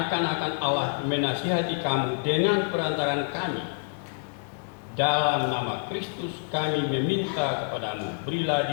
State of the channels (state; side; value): silent; right; 60 dB below the other